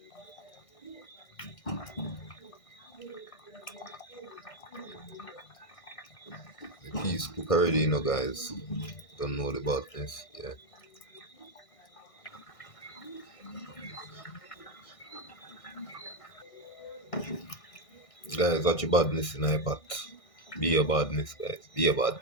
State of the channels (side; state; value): right; late; 1.6 ms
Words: The peas cook already, guys. Don't know the badness. Yeah. Guys, watch your badness in my pot. Be your badness, guys. Be your